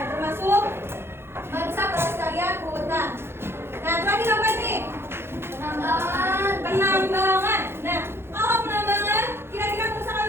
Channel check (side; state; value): left; late; 0.12 ms